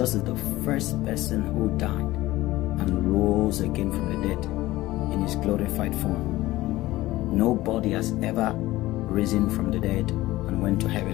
is the first person who died and rose again from the dead in his glorified form. Nobody has ever risen from the dead and went to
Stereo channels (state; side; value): quieter; right; 17.4 dB